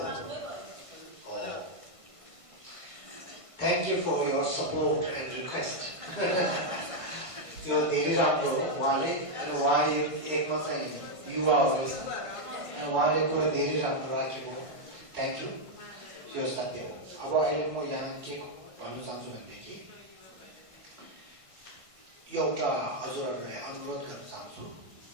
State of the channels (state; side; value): late; left; 1.5 ms